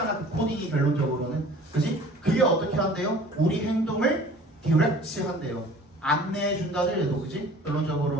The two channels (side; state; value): both; normal; correlation 0.47